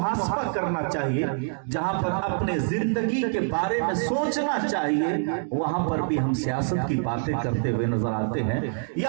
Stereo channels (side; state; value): left; silent; digital silence